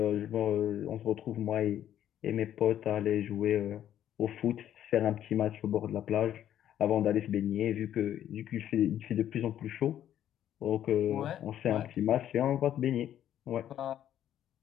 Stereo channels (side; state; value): right; quieter; 11.0 dB